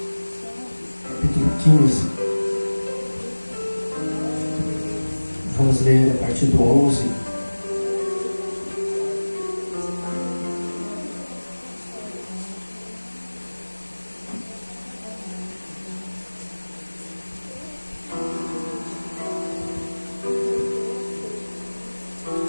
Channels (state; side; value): inverted; both; correlation -1.00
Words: Capítulo 15. Vamos ler a partir do 11.